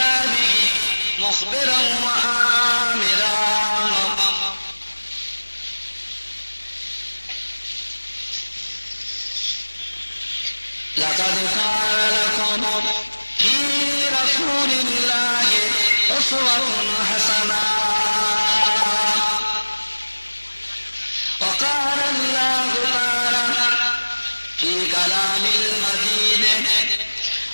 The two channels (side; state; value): both; inverted; correlation -1.00